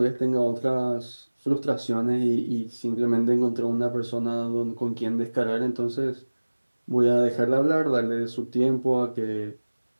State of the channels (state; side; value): inverted; both; correlation -1.00